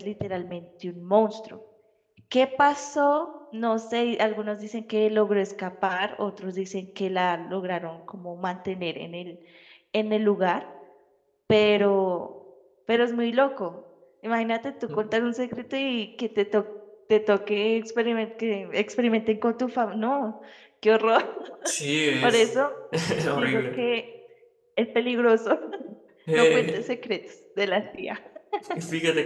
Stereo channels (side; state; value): both; identical; correlation 1.00